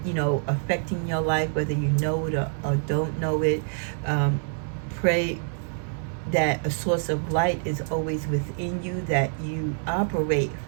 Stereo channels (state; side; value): silent; left; digital silence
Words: affecting your life, whether you know it or don't know it. Pray that a source of light is always within you, that you operate